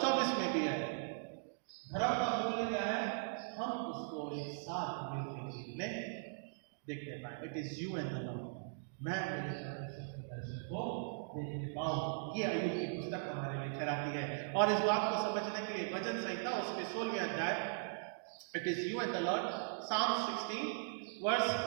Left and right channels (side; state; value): left; silent; digital silence